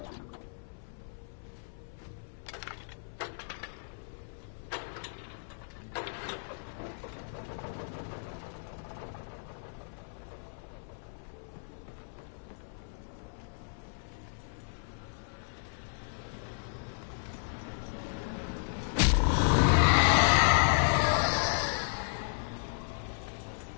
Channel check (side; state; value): right; silent; 55 dB below the other